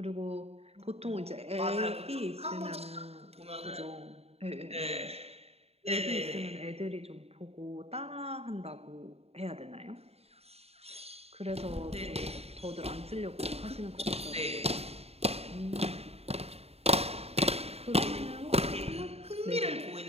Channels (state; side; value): late; left; 0.30 ms